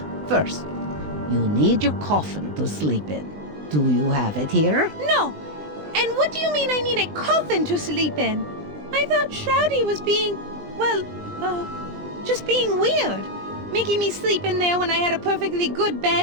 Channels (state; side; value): late; left; 20 ms